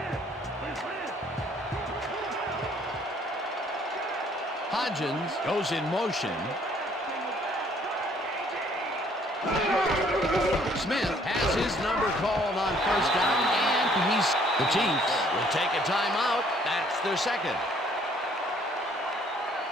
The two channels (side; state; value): both; normal; correlation 0.61